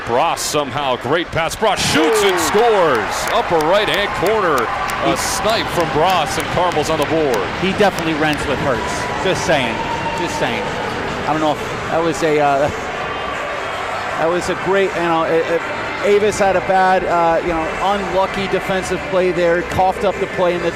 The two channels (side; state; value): both; identical; correlation 1.00